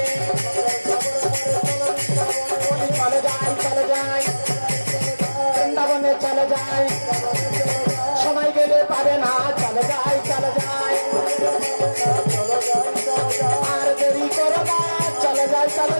চলে যায় বৃন্দাবনে চলে যায় সময় গেলে পাবে না চলে যায় আর দেরি করো না চলে যায়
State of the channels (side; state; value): both; inverted; correlation -1.00